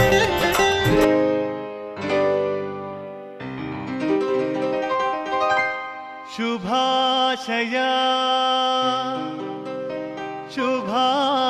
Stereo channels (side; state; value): both; identical; correlation 1.00